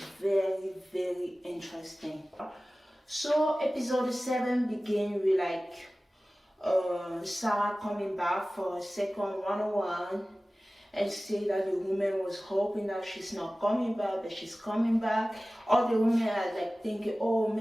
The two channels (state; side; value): normal; both; correlation 0.97